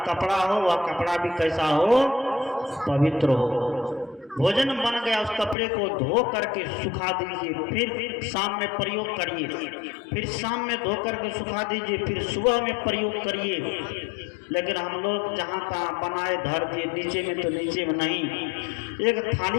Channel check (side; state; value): right; drops out; at 5.6 s